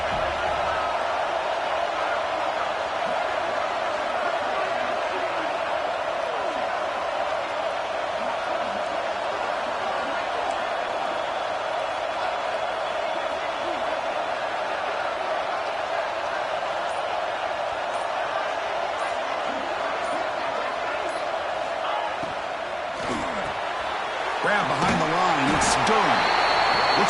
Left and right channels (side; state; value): both; identical; correlation 1.00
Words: Grab behind the line. It's Durham.